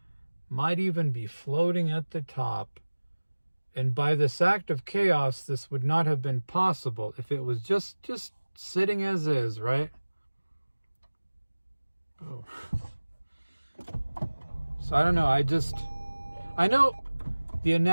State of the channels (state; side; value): inverted; both; correlation -1.00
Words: might even be floating at the top. And by this act of chaos, this would not have been possible if it was just sitting as is, right? Oh. So I don't know, I know the